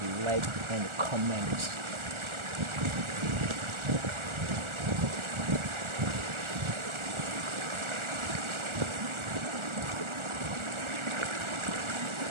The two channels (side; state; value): left; late; 1.4 ms